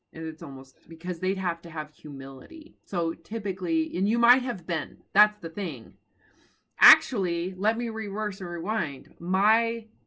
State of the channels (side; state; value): both; identical; correlation 1.00